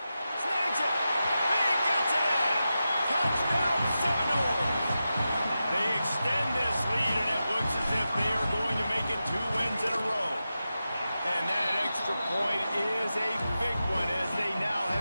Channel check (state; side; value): inverted; both; correlation -0.91